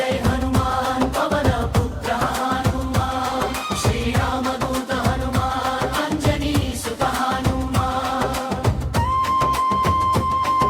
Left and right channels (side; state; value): both; identical; correlation 1.00